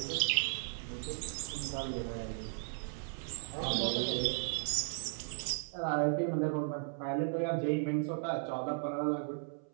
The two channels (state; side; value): silent; left; 54 dB below the other